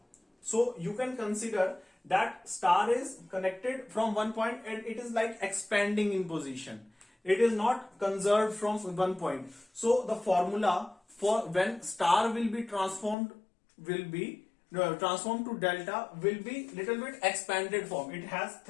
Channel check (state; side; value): drops out; right; at 13.2 s